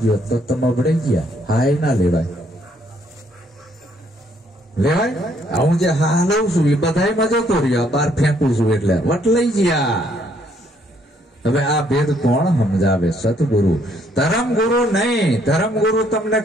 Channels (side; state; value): both; normal; correlation 0.68